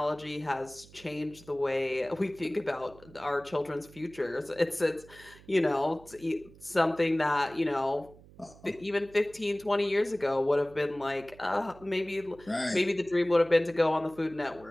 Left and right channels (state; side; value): noise; right; hum, 23 dB below the sound